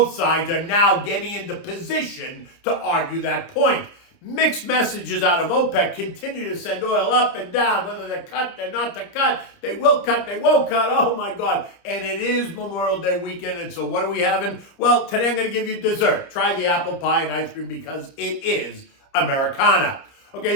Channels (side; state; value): right; late; 30 ms